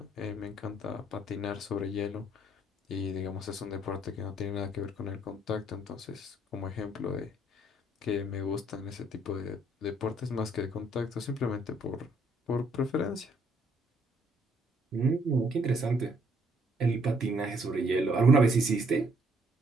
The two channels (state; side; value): normal; both; correlation 0.66